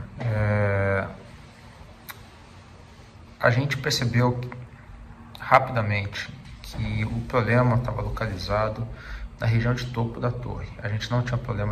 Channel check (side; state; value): both; identical; correlation 1.00